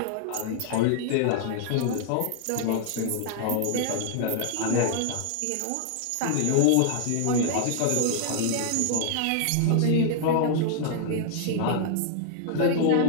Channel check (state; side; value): different; both; correlation 0.00